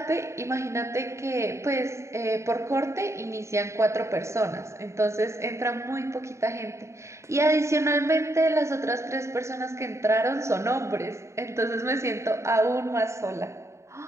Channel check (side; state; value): left; late; 0.14 ms